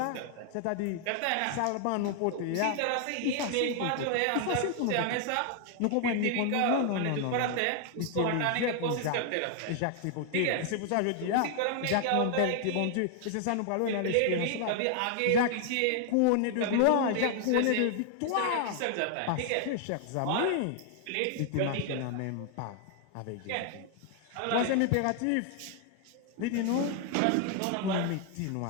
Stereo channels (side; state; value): both; different; correlation 0.00